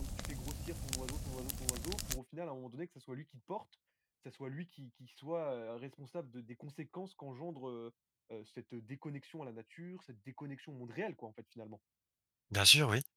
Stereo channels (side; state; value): both; identical; correlation 1.00